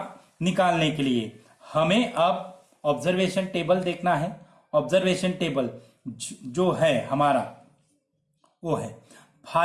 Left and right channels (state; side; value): identical; both; correlation 1.00